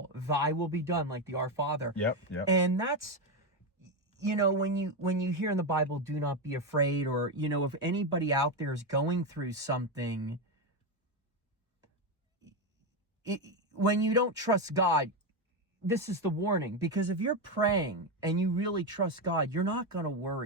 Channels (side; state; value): both; normal; correlation 0.10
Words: Thy will be done, like the Our Father. Yep. And that's, you know, when you hear in the Bible, do not be afraid, or, you know, if anybody out there is going through something, when you don't trust God, this is the warning. Because if you're praying and you really trust God, you're not going to